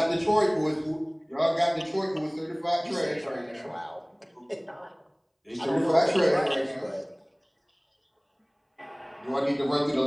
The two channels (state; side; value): identical; both; correlation 1.00